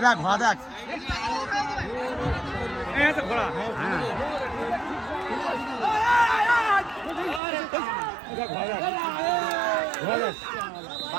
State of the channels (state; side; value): drops out; left; at 7.4 s